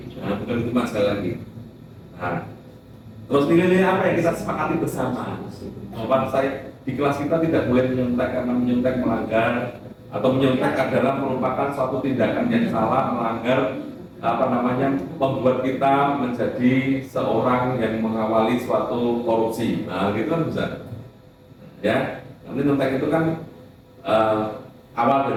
Nah, berhukuman sekali lagi. Nah, terus nilai-nilai apa yang kita sepakati bersama? Bahwa saya di kelas kita tidak boleh menyontek karena menyontek melanggar, atau menyontek adalah merupakan suatu tindakan yang salah, melanggar membuat kita menjadi seorang yang mengawali suatu korupsi. Nah, gitu kan bisa. Ya, nanti nyontek itu kan awal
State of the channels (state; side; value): identical; both; correlation 1.00